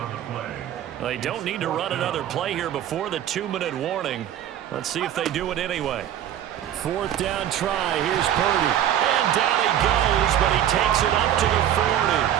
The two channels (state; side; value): quieter; left; 10.8 dB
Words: They don't need to run another play here before the 2-minute warning. Let's see if they do it anyway. 4th down try. Here's Purdy. And down he goes, but he takes it up to the 40.